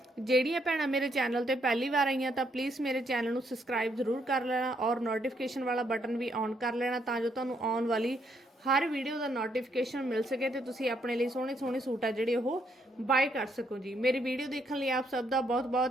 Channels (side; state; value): both; normal; correlation 0.73